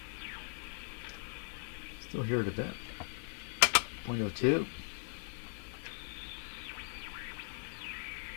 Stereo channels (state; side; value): silent; right; digital silence